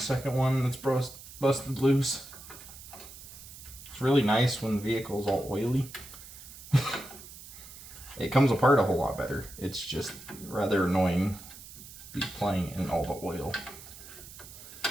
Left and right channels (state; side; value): noise; right; hiss, 16 dB below the sound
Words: one that's busted loose. It's really nice when the vehicle's all oily. It comes apart a whole lot better. It's just rather annoying be playing in all the oil